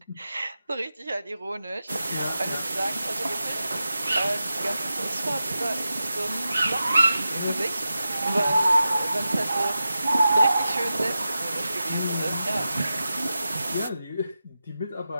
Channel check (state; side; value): inverted; both; correlation -0.92